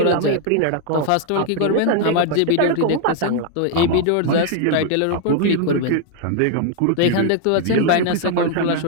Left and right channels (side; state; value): both; different; correlation 0.00